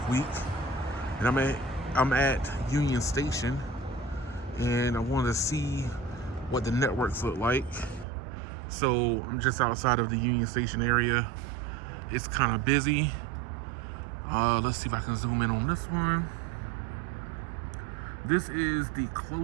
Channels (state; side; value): drops out; left; at 8.1 s